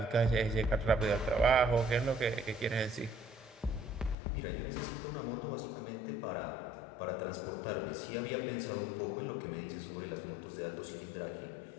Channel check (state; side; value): drops out; right; at 4.2 s